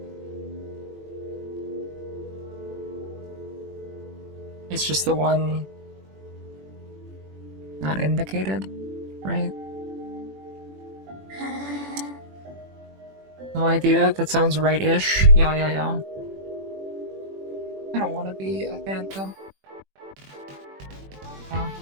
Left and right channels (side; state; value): left; late; 21 ms